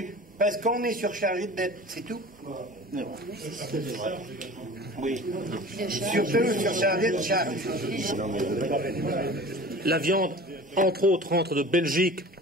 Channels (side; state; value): both; normal; correlation 0.40